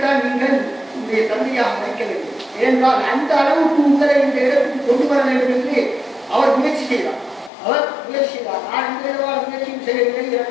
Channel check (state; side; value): drops out; right; at 7.5 s